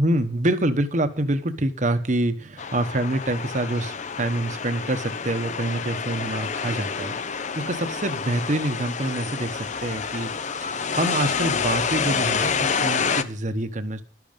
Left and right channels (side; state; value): both; normal; correlation 0.38